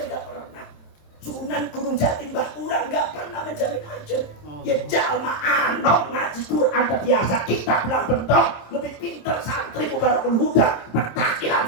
pernah. Sunan Gunung Jatin bah urang nggak pernah menjamin aja. Ya jalma anok ngaji Quran terbiasa, kita bilang bentok lebih pintar santri Mubarakul Huda, pentakilan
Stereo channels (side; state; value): right; late; 27 ms